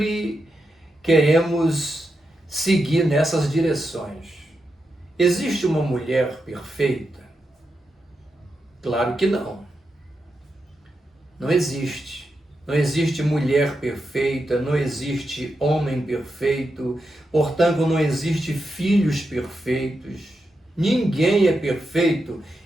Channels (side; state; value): both; normal; correlation 0.86